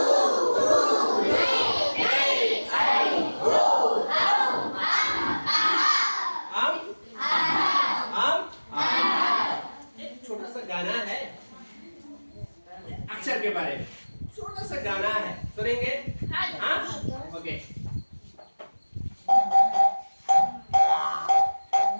एक छोटा सा गाना है अक्षर के बारे में। छोटा सा गाना है, सुनेंगे? हाँ, ओके।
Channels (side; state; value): both; inverted; correlation -1.00